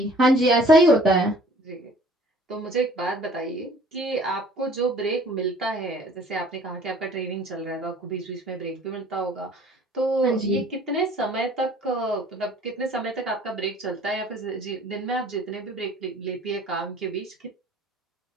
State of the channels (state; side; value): normal; both; correlation 0.52